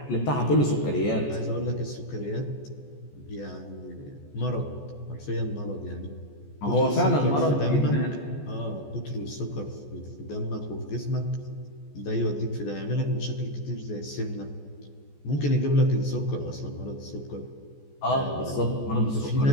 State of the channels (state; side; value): late; right; 14 ms